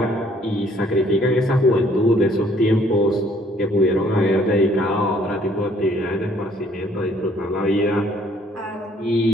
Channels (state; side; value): normal; both; correlation 0.62